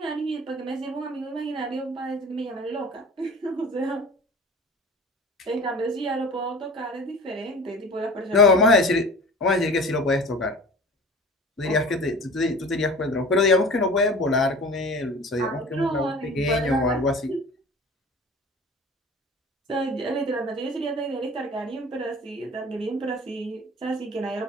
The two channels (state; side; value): normal; both; correlation 0.40